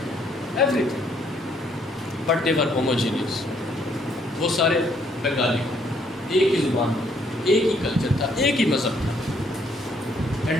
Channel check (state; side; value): normal; both; correlation 0.68